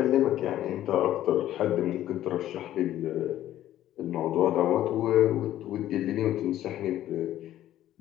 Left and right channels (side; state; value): right; quieter; 12.9 dB